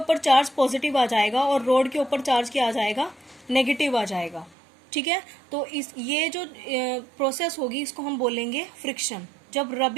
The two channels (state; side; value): drops out; left; at 4.5 s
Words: चार्ज पॉजिटिव आ जाएगा और रोड के ऊपर चार्ज क्या आ जाएगा, नेगेटिव आ जाएगा। ठीक है, तो ये जो प्रोसेस होगी इसको हम बोलेंगे फ्रिक्शन, जब